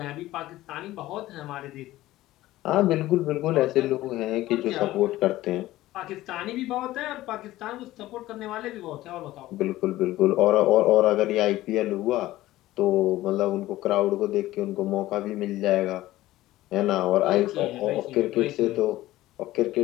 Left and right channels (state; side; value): quieter; right; 16.2 dB